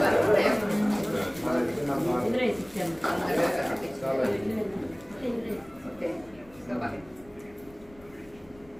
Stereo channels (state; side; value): noise; left; rumble, 25 dB below the sound